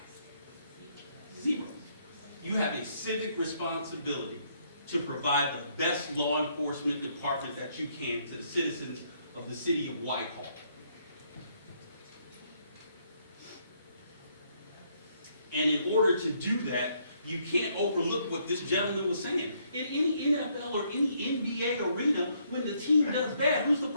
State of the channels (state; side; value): inverted; both; correlation -0.70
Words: Zero. You have a civic responsibility to provide the best law enforcement department that you can to the citizens of the city of Whitehall. And in order to do that, you can't overlook what this gentleman was saying. In any NFL or any NBA arena, when the team does bad, who's the